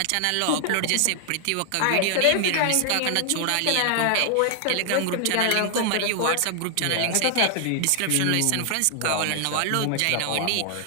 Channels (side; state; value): both; different; correlation 0.00